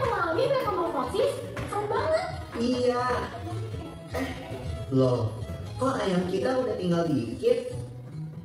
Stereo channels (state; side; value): identical; both; correlation 1.00